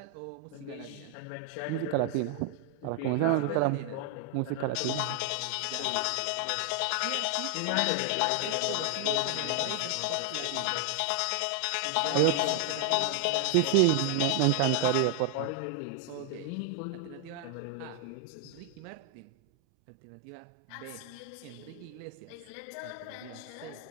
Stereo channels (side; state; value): both; different; correlation 0.00